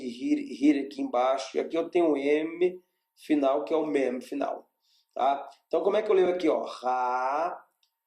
embaixo, e aqui eu tenho o M final, que é o Mem final. Tá? Então, como é que eu leio aqui? Ó? Ra,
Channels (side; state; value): both; identical; correlation 1.00